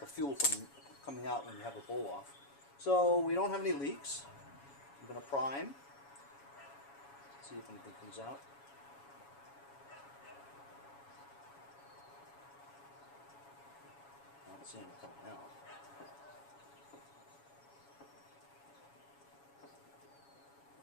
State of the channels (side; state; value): right; late; 7.2 ms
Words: the fuel from coming out when you have the bowl off. So we don't have any leaks. I'm going to prime, see if anything comes out. I don't see anything coming out.